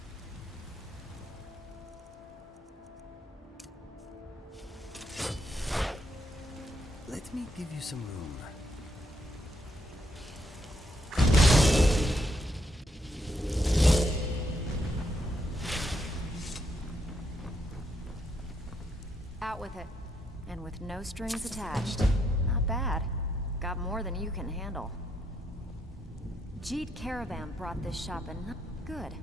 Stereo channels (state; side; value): normal; both; correlation 0.76